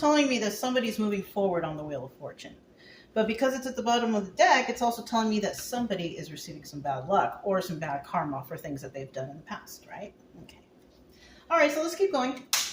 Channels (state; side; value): identical; both; correlation 1.00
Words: me that somebody's moving forward on the Wheel of Fortune. But because it's at the bottom of the deck, it's also telling me that somebody is receiving some bad luck or some bad karma for things that they've done in the past, right? Okay. All right, so let's keep going.